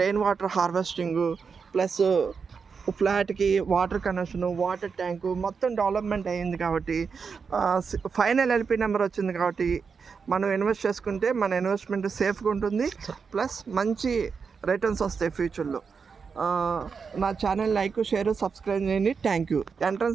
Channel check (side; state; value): left; quieter; 5.6 dB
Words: water harvesting, plus ఫ్లాట్కి వాటర్ కనెక్షను, వాటర్ ట్యాంకు మొత్తం డెవలప్మెంట్ అయ్యింది. కాబట్టి ఫైనల్ ఎల్పి నెంబర్ వచ్చింది. కాబట్టి మనం ఇన్వెస్ట్ చేసుకుంటే మన ఇన్వెస్ట్మెంట్ సేఫ్గా ఉంటుంది, ప్లస్ మంచి రిటర్న్స్ వస్తాయి ఫ్యూచర్లో. నా ఛానల్ లైక్, షేర్, సబ్స్క్రైబ్ చేయండి. Thank you.